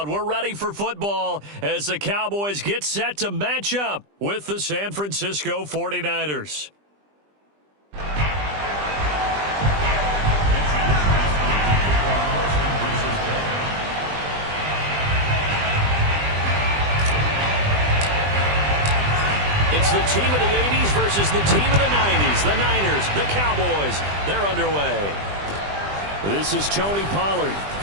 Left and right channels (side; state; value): left; late; 20 ms